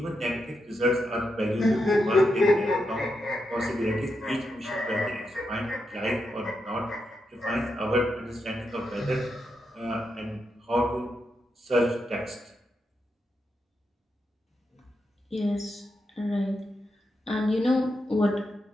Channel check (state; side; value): normal; both; correlation 0.84